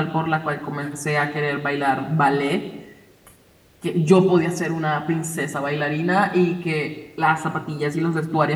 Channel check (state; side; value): identical; both; correlation 1.00